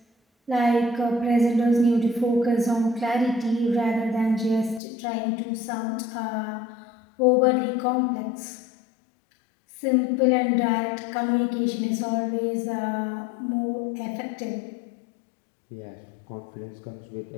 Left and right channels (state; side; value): drops out; right; at 4.8 s